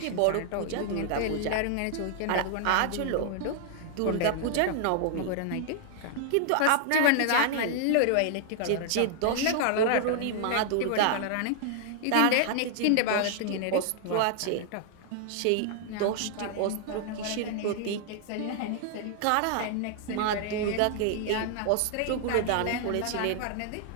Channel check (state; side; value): different; both; correlation 0.00